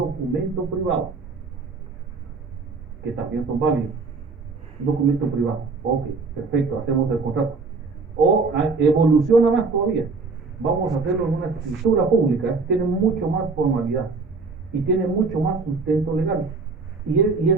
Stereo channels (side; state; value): left; quieter; 4.3 dB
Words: que también son válidos. Un documento privado. Ok, perfecto, hacemos el contrato. O evoluciona más todavía. Vamos a hacerlo en una escritura pública. Tiene mucho más formalidad y tiene mucho más sustento legal. Y